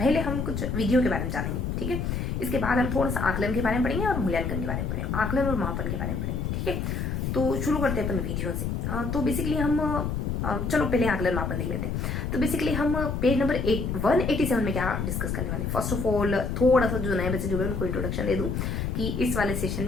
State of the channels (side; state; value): left; noise; rumble, 2 dB below the sound